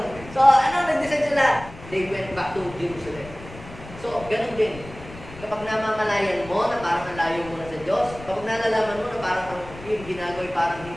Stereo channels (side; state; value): left; noise; rumble, 16 dB below the sound